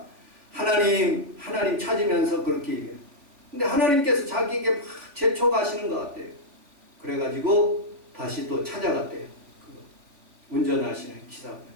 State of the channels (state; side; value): late; left; 3.5 ms